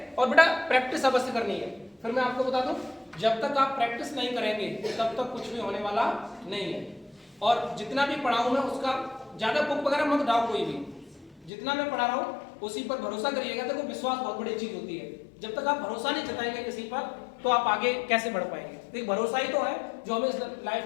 और बेटा प्रैक्टिस अवश्य करनी है। फिर मैं आपको बता दूं, जब तक आप प्रैक्टिस नहीं करेंगे तब तक कुछ भी होने वाला नहीं है। और जितना भी पढ़ाऊं मैं उसका ज्यादा बुक वगैरह मत डालो, कोई भी जितना मैं पढ़ा रहा हूं उसी पर भरोसा करिएगा। देखो विश्वास बहुत बड़ी चीज होती है, जब तक आप भरोसा नहीं जताएंगे किसी पर तो आप आगे कैसे बढ़ पाएंगे? तो भरोसा ही तो है जो हमें लाइफ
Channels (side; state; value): right; drops out; at 11.5 s